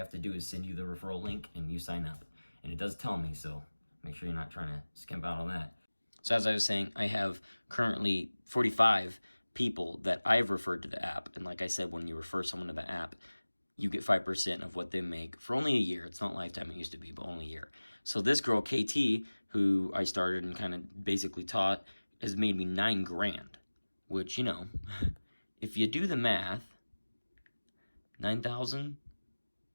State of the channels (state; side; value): inverted; both; correlation -1.00